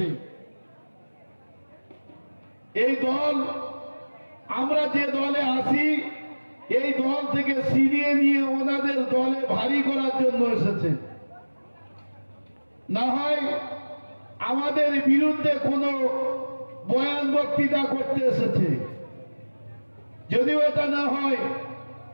এই দল, আমরা যে দলে আসি, এই দল থেকে ছিনিয়ে নিয়ে ওনাদের দলে ভারী করার জন্য এসেছে। না হয় আমাদের বিরুদ্ধে কোনো বয়ান বক্তৃতা করতে এসেছে। যদিও এটা না হয়,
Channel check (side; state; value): both; inverted; correlation -1.00